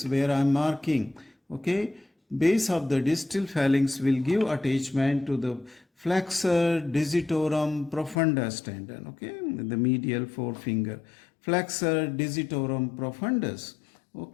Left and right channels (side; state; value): right; drops out; at 8.2 s